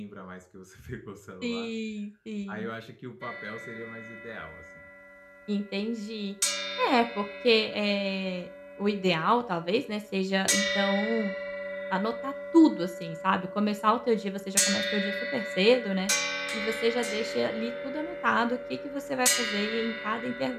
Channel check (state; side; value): identical; both; correlation 1.00